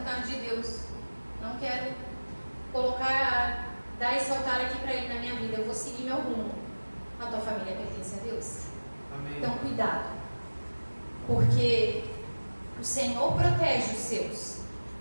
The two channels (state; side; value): inverted; both; correlation -1.00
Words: de Deus, não quero dar esse altar aqui para Ele na minha vida, eu vou seguir meu rumo. A tua família pertence a Deus. Amém. Então, cuidado, porque o Senhor protege os seus.